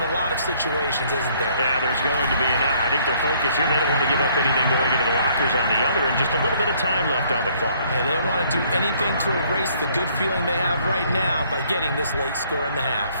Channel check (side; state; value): both; inverted; correlation -0.63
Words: a lot of situations, isn't there? Yeah, there's going to be. And I think their focus here, they don't want to give up anything going into the lockers on the other, and just a little bit of time left on the clock. Yeah, they don't want to do anything to erase the good feeling they have right now by getting this late score in the half.